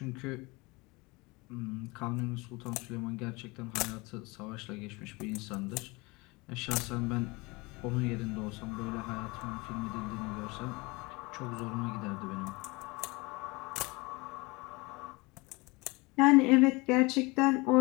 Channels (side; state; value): right; quieter; 25.2 dB